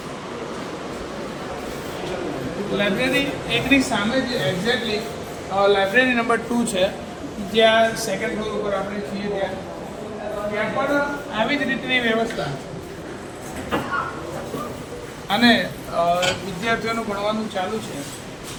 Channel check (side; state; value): both; identical; correlation 1.00